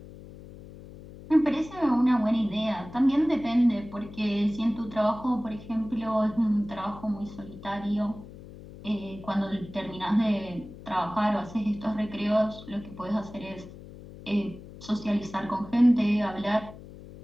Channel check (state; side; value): noise; left; hum, 16 dB below the sound